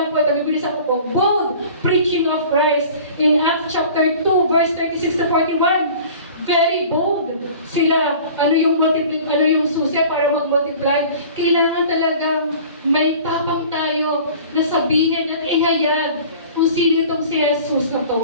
po ito. Bibilisan ko po. Bold preaching of Christ in Acts chapter 2, verse 36 to 41. Very bold sila. Ano yung susi para mag-multiply? Kailangan talagang may tapang tayo na sabihin at ihayag kung sino itong si Jesus na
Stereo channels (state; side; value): inverted; both; correlation -0.45